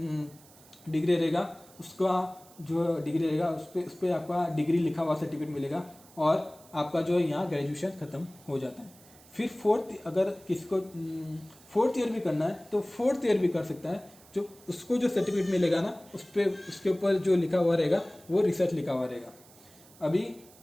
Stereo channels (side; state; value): right; noise; hiss, 24 dB below the sound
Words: डिग्री रहेगा उसका जो डिग्री रहेगा उस पर आपका डिग्री लिखा हुआ सर्टिफिकेट मिलेगा, और आपका जो है यहाँ ग्रेजुएशन खत्म हो जाता है। फिर फोर्थ, अगर किसी को फोर्थ ईयर भी करना है तो फोर्थ ईयर भी कर सकता है। जो उसको जो सर्टिफिकेट मिलेगा ना उस पर उसके ऊपर जो लिखा हुआ रहेगा वो रिसर्च लिखा हुआ रहेगा। अभी